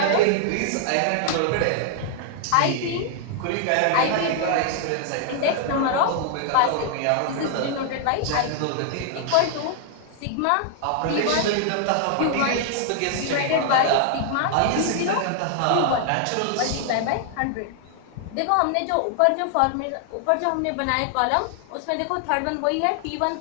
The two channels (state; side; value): different; both; correlation 0.00